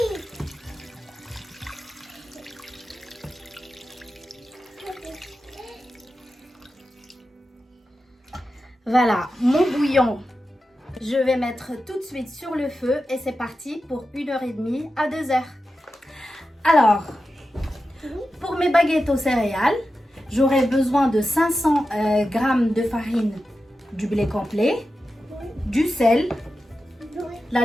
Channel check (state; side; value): normal; both; correlation 0.91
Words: Voilà, mon bouillon. Je vais mettre tout de suite sur le feu et c'est parti pour 1h30 à 2h. Alors, pour mes baguettes aux céréales, j'aurai besoin de 500 g de farine du blé complet, du sel, la